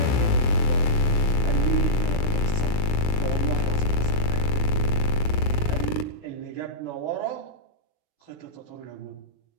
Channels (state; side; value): late; right; 9.7 ms